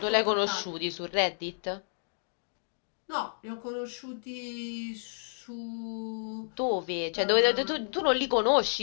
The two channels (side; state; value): right; silent; digital silence